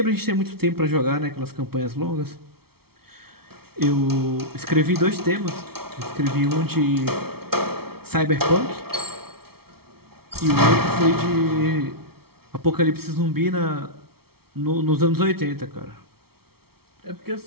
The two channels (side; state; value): left; late; 0.95 ms